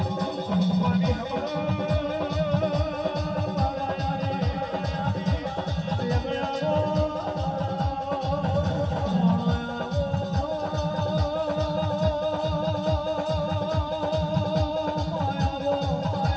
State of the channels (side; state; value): both; identical; correlation 1.00